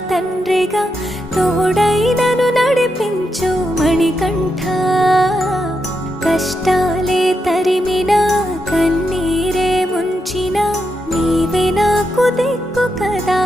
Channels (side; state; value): both; normal; correlation 0.84